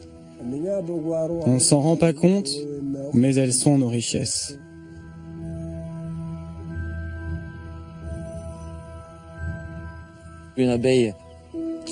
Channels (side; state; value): both; identical; correlation 1.00